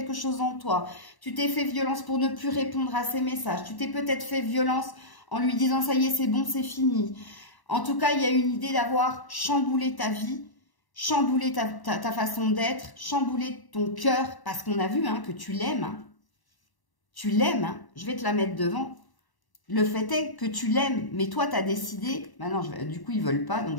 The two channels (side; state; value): right; late; 1.0 ms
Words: chose en toi. Tu t'es fait violence pour ne plus répondre à ses messages. Tu t'es peut-être fait violence en lui disant « ça y est, c'est bon, c'est fini ». En tout cas, il y a une idée d'avoir chamboulé ta vie, chamboulé ta façon d'être, chamboulé ton cœur, parce qu'on a vu hein, que tu l'aimes. Hein. Tu l'aimes, hein. Je vais te la mettre devant. Le fait est que tu l'aimes, mais toi, tu as décidé... Maintenant, du coup, ils ne veulent pas, donc